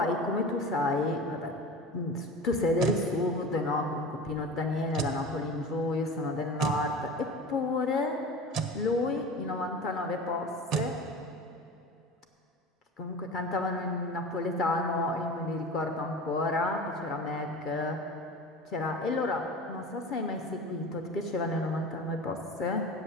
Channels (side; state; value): both; normal; correlation 0.33